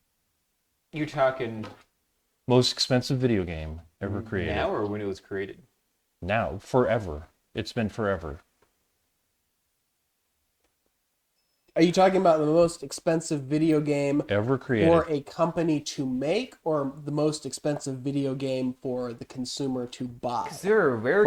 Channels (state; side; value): identical; both; correlation 1.00